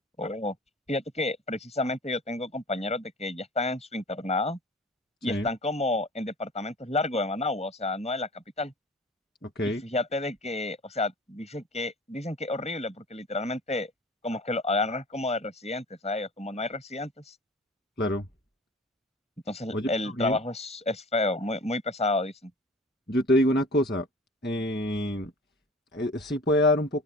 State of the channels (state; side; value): normal; both; correlation 0.41